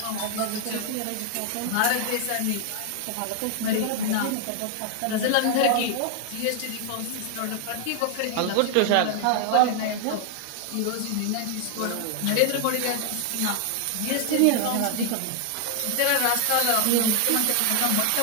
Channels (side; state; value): both; different; correlation 0.00